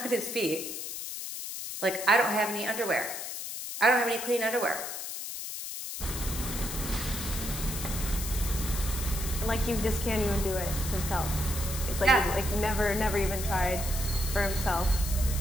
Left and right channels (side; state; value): left; noise; hiss, 6 dB below the sound